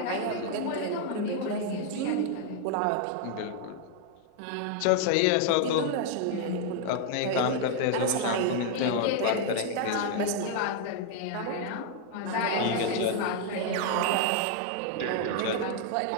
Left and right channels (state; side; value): different; both; correlation 0.00